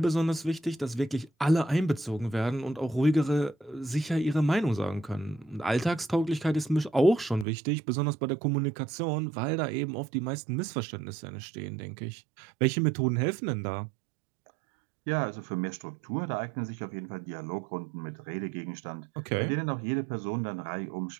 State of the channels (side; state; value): left; drops out; at 7.5 s